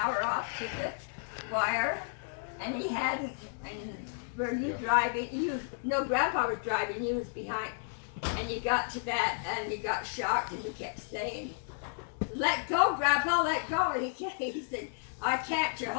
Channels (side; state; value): right; silent; digital silence